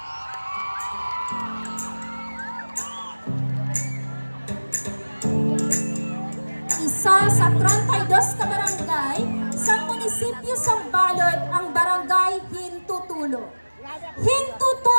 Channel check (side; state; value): both; inverted; correlation -1.00